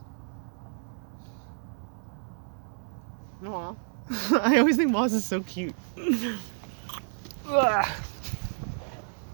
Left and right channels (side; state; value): left; silent; digital silence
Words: Aww. I always think moss is so cute.